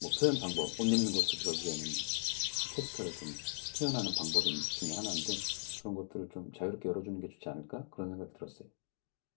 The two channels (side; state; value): right; silent; digital silence